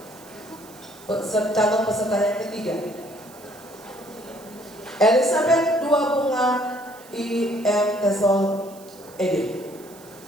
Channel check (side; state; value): right; noise; hiss, 22 dB below the sound